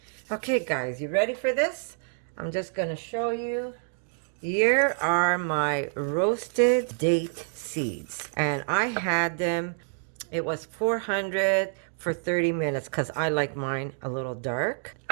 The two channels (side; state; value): left; silent; digital silence